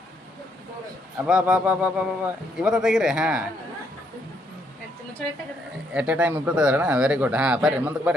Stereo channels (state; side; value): normal; both; correlation 0.73